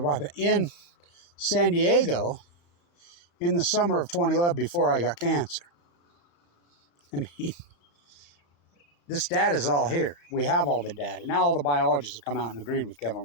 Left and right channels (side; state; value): right; late; 35 ms